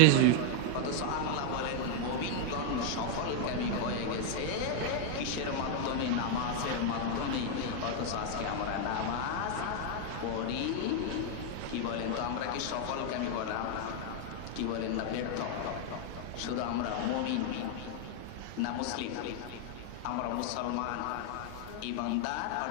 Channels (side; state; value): both; different; correlation 0.00